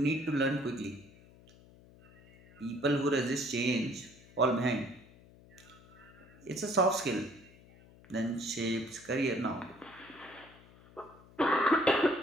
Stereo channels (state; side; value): noise; left; hum, 24 dB below the sound